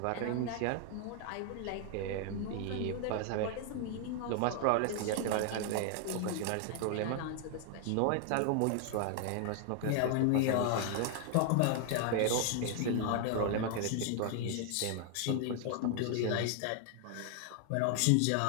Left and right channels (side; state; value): both; different; correlation 0.00